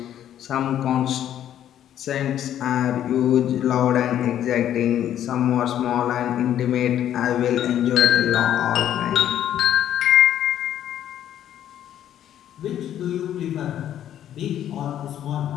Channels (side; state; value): right; quieter; 10.9 dB